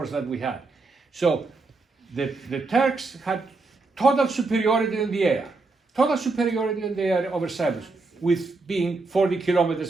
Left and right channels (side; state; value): left; quieter; 3.6 dB